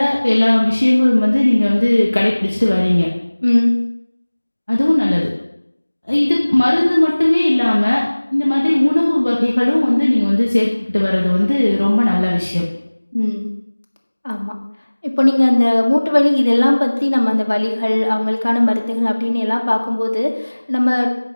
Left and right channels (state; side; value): inverted; both; correlation -1.00